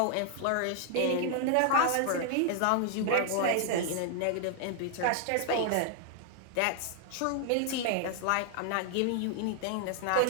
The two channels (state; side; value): different; both; correlation 0.00